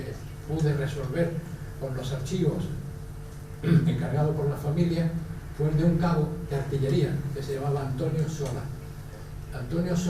pude resolver con los archivos encargado por la familia fue el de un cabo de artillería que se llamaba Antonio Sola. Antonio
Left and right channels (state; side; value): identical; both; correlation 1.00